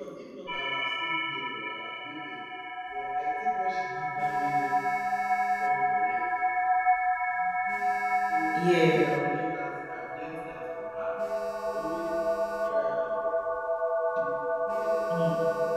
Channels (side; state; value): both; identical; correlation 1.00